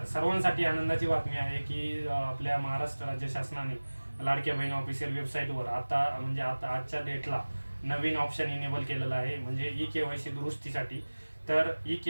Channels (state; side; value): inverted; both; correlation -1.00